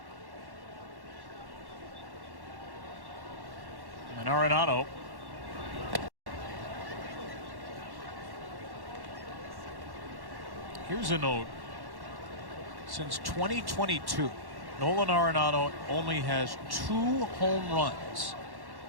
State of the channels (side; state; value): left; late; 1.1 ms